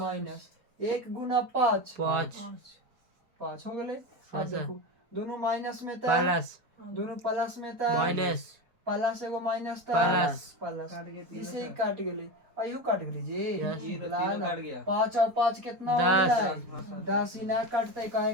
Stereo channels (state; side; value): late; left; 4.2 ms